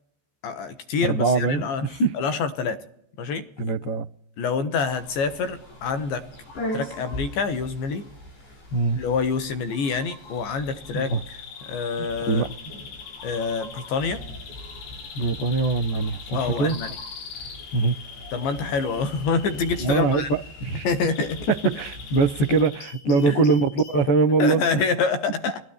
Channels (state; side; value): late; right; 15 ms